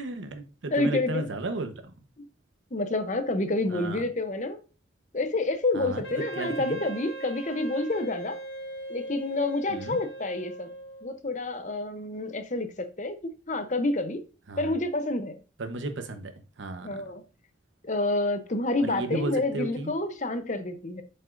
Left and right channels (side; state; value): both; normal; correlation 0.24